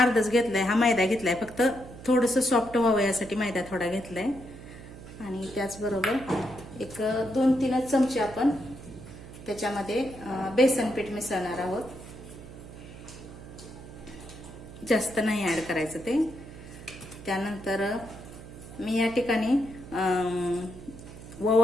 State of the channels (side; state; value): right; noise; hum, 15 dB below the sound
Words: घेतलाय, हा मैदा घेतलाय, फक्त थोडंसं सॉफ्ट व्हावं यासाठी मैदा थोडा घेतलाय। आणि त्याचबरोबर एक 2-3 चमचे आपण त्याच्यामध्ये बेसन पीठ मिसळणार आहोत, जास्त नाही ऍड करायचं ते। त्यानंतर मी या ठिकाणी